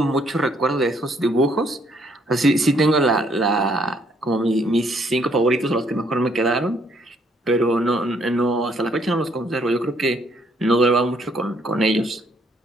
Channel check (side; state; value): both; normal; correlation 0.68